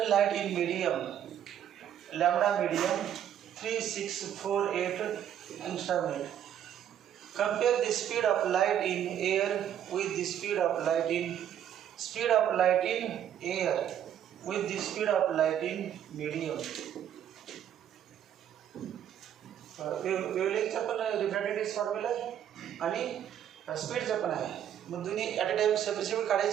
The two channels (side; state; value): left; quieter; 10.1 dB